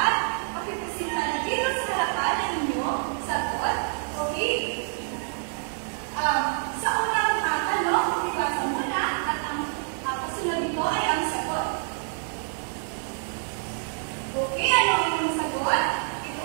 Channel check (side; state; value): left; silent; 60 dB below the other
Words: pakipresenta na dito sa harapan ng inyong sagot. Okay? Sa unang tanong, magbasa muna at ang kasunod nito ay ang sagot. Okay, ano ang inyong sagot? Ito